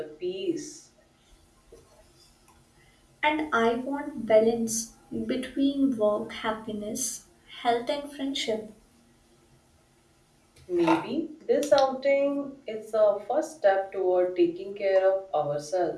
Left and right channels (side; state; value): both; identical; correlation 1.00